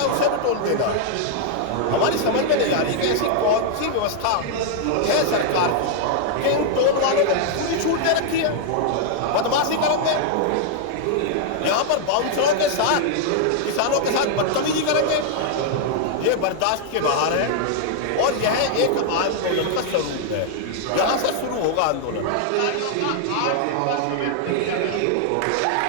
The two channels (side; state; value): both; different; correlation 0.00